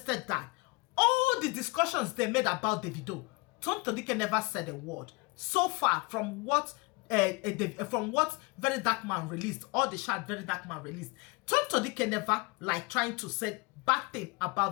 that. All the discussions they made about the video, Tonto Dikeh never said a word. So far, from what Very Dark Man released, all the chat Very Dark Man released, Tonto Dikeh never like trying to say bad thing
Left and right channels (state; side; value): quieter; right; 26.5 dB